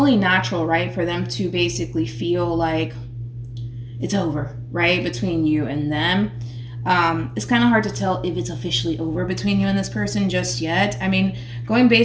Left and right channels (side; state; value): both; identical; correlation 1.00